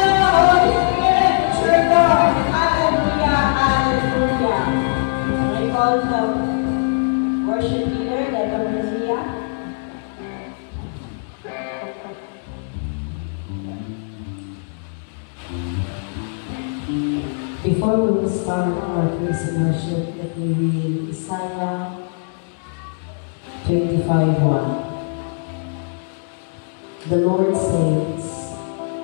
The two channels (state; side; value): silent; right; digital silence